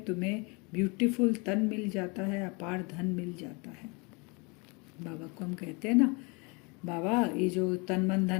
तुम्हें ब्यूटीफुल तन मिल जाता है, अपार धन मिल जाता है। बाबा को हम कहते हैं ना, बाबा ये जो तन मन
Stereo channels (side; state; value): right; quieter; 29.9 dB